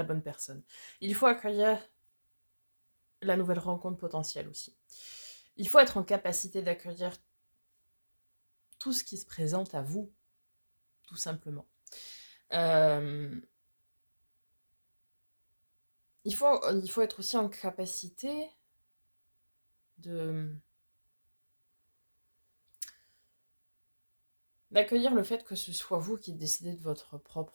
bonne personne. Il faut accueillir la nouvelle rencontre potentielle aussi. Il faut être en capacité d'accueillir tout ce qui se présente à vous, tout simplement. Il faut être aussi en capacité d'accueillir le fait que ce soit vous qui décidez de votre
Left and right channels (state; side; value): inverted; both; correlation -1.00